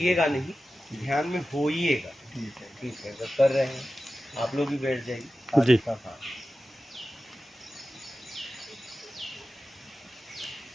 नहीं, ध्यान में होइएगा। ठीक है। ठीक है, अगर कर रहे हैं आप लोग भी बैठ जाइए। जी। हाँ हाँ।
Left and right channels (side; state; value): both; normal; correlation 0.94